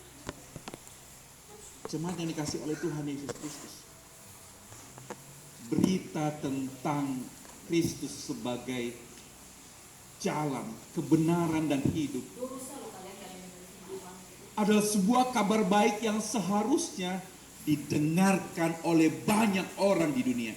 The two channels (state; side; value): identical; both; correlation 1.00